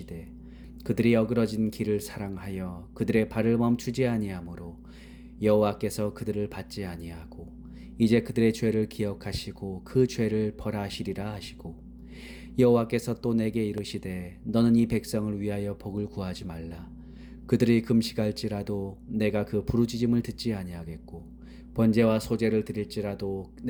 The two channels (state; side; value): identical; both; correlation 1.00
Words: 그들이 어그러진 길을 사랑하여 그들의 발을 멈추지 아니하므로 여호와께서 그들을 받지 아니하고 이제 그들의 죄를 기억하시고 그 죄를 벌하시리라 하시고 여호와께서 또 내게 이르시되 너는 이 백성을 위하여 복을 구하지 말라. 그들이 금식할지라도 내가 그 부르짖음을 듣지 아니하겠고 번제와 소제를 드릴지라도